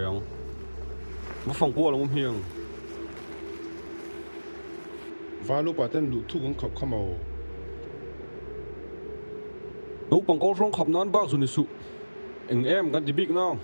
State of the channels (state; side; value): inverted; both; correlation -1.00